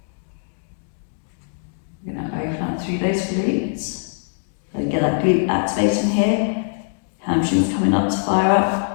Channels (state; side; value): silent; right; digital silence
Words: We're going to open up through those glutes. So get that glute activating here. Hamstrings coming up to fire